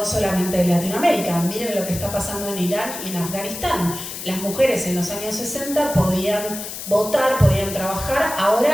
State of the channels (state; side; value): noise; left; hiss, 9 dB below the sound